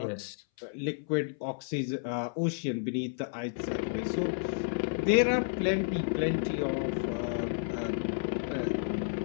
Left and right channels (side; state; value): right; silent; 57 dB below the other